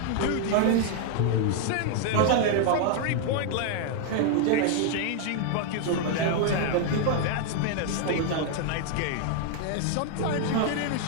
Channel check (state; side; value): different; both; correlation 0.00